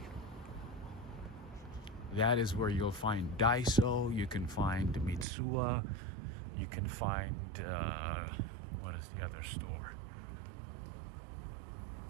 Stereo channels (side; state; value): left; drops out; at 5.2 s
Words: that is where you'll find Daiso, you can find Mitsuwa, you can find, what is the other store?